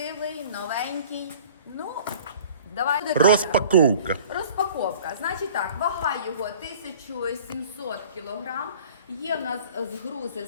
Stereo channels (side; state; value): both; inverted; correlation -0.48